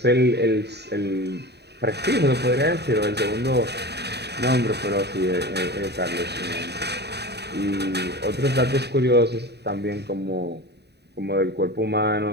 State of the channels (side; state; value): left; late; 0.48 ms